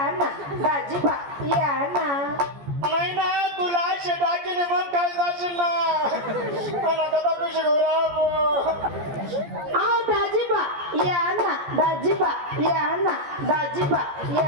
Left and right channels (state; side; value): late; left; 14 ms